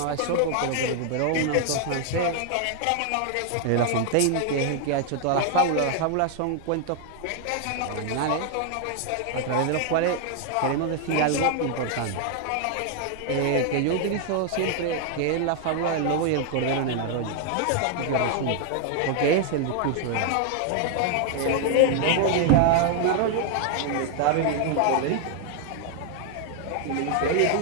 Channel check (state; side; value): different; both; correlation 0.00